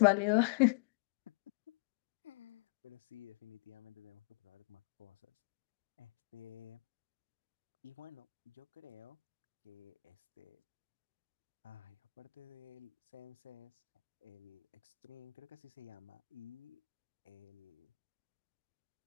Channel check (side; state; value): right; quieter; 28.5 dB